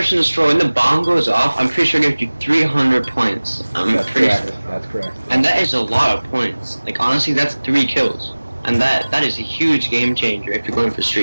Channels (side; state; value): both; inverted; correlation -1.00